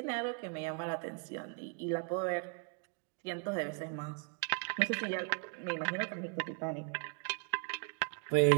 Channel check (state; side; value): quieter; left; 37.8 dB